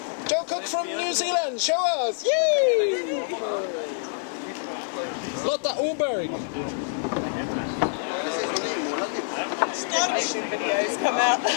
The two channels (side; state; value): right; silent; digital silence